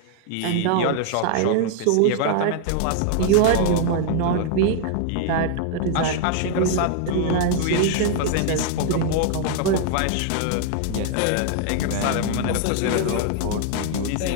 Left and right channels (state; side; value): different; both; correlation 0.00